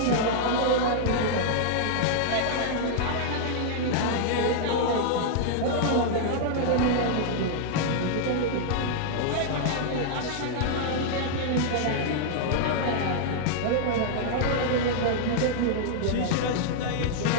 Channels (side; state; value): both; different; correlation -0.01